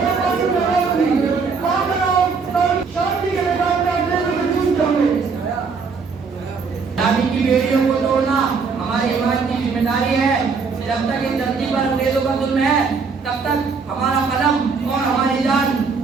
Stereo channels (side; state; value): left; quieter; 5.1 dB